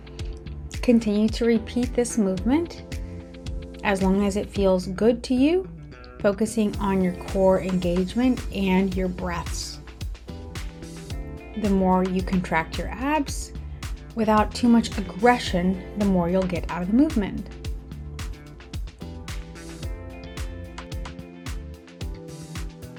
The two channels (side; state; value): both; identical; correlation 1.00